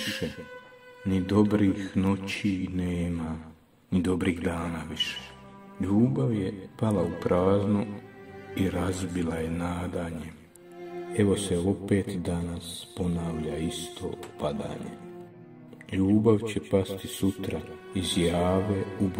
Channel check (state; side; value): identical; both; correlation 1.00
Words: ni dobrih noći nema, ni dobrih dana više. Ljubav je pala u prazno i razbila je nadanje. Evo se opet danas ponavlja isto padanje. Ljubav će pasti sutra iz jave u